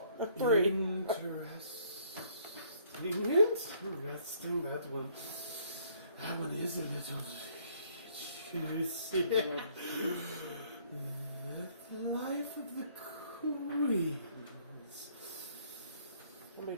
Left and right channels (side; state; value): both; inverted; correlation -0.63